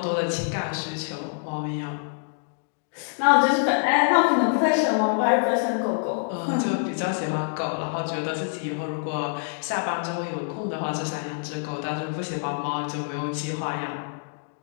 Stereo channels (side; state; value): right; silent; digital silence